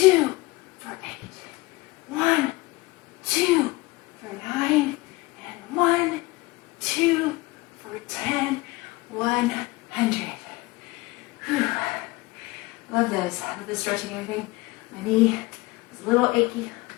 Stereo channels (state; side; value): quieter; right; 21.6 dB